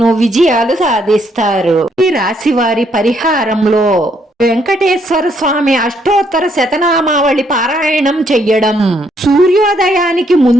విజయాలు సాధిస్తారు. ఈ రాశి వారి పరిహారంలో వెంకటేశ్వర స్వామి అష్టోత్తర శతనామావళి పారాయణం చెయ్యడం, సూర్యోదయానికి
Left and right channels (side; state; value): both; normal; correlation 0.71